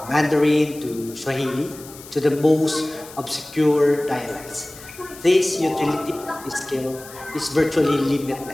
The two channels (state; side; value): noise; left; hiss, 18 dB below the sound